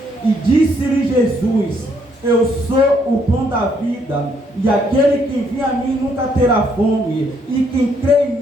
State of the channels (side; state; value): both; normal; correlation 0.70